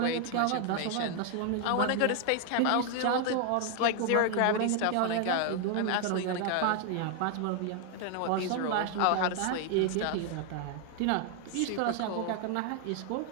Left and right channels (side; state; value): both; different; correlation 0.00